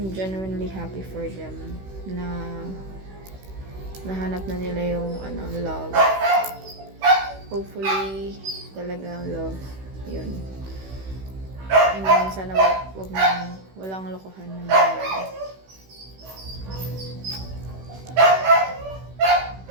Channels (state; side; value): late; left; 16 ms